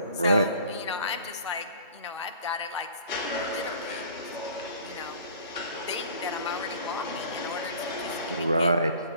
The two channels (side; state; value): both; inverted; correlation -0.47